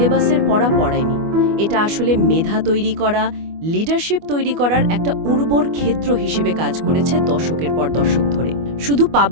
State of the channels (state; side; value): late; left; 24 ms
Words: পড়া পড়ায়নি, এটা আসলে মেধা তৈরি করা, লিডারশিপ তৈরি করার একটা উর্বর ক্ষেত্র হিসেবে কাজ করেছে দশকের পর দশক ধরে। শুধু